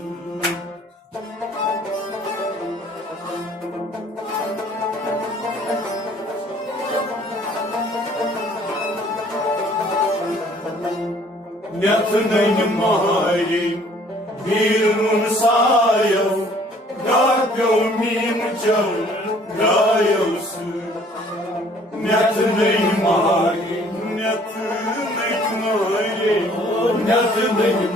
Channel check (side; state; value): both; normal; correlation 0.57